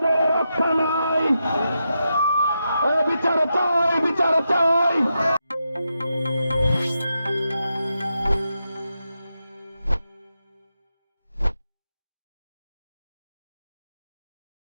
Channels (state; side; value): inverted; both; correlation -0.86